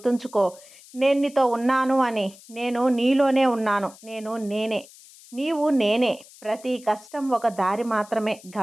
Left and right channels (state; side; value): noise; left; hiss, 22 dB below the sound